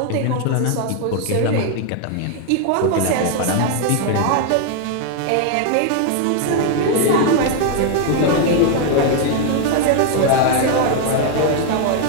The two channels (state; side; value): different; both; correlation 0.00